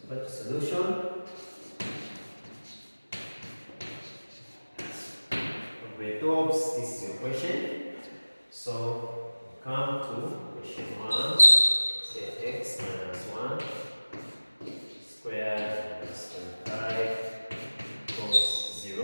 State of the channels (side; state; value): both; inverted; correlation -1.00